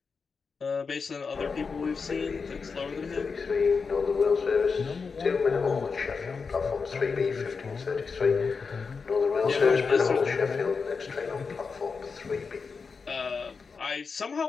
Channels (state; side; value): quieter; right; 5.1 dB